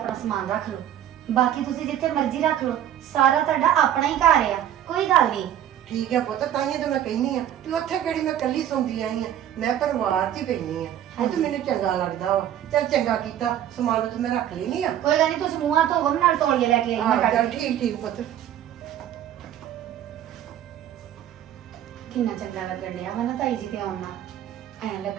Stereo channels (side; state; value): left; quieter; 11.0 dB